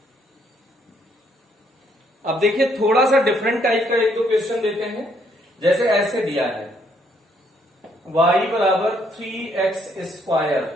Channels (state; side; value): normal; both; correlation 0.69